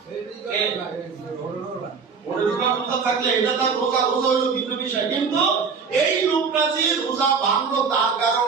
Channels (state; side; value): quieter; left; 5.5 dB